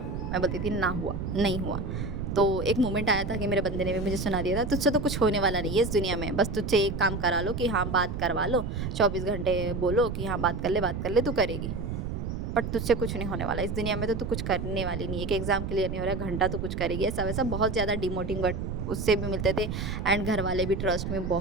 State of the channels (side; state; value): right; noise; rumble, 4 dB below the sound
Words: मैं बोलती थी ना हुआ, नहीं हुआ। तो एक मोमेंट आया था कि मेरे बंदे ने भी मुझे सुना दिया था, तुझसे तो कुछ होने वाला नहीं है इस दुनिया में, बस तुझसे एक काम करा लो कि हाँ बात करवा लो, 24 घंटे बोलो कि हाँ बात कर ले, तू करेगी, बट तुझसे कुछ नहीं होने वाला इस दुनिया में, तो तू कुछ करने वाली नहीं है। कि एग्ज़ाम क्लियर नहीं हो रहा है, घंटा तो कुछ करेगी, ऐसा वैसा बहुत ज़्यादा डिमोटिंग वर्ड उससे भी मिलते थे। एंड घर वाले भी ट्रस्ट में